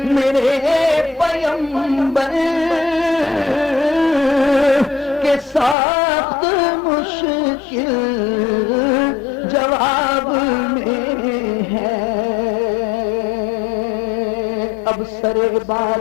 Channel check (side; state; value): right; drops out; at 5.8 s